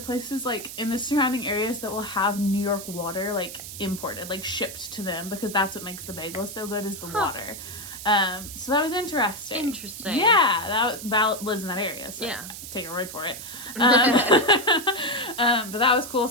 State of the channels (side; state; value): right; noise; hiss, 11 dB below the sound